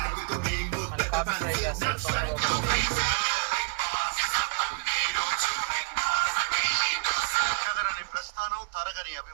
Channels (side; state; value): left; quieter; 32.5 dB